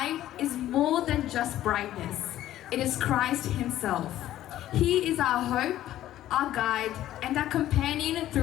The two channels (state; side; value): quieter; right; 13.3 dB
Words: is more than just brightness. It is Christ Himself. He is our hope, our guide, and our companion